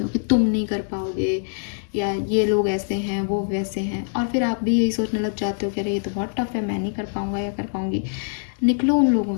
हो कि तुम नहीं कर पाओगे, या ये लोग ऐसे हैं वो वैसे हैं, और फिर आप भी यही सोचने लग जाते हो कि अरे ये तो बहुत टफ है, मैं नहीं कर पाऊँगा या कर पाऊँगी। निकलो उन लोगों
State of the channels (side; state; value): right; silent; digital silence